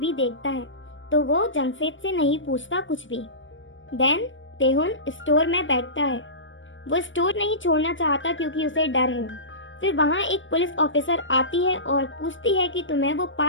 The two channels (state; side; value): late; right; 0.56 ms